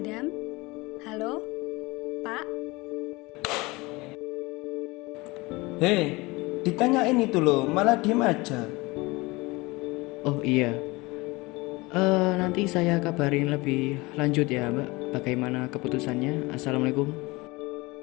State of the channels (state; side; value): quieter; right; 23.2 dB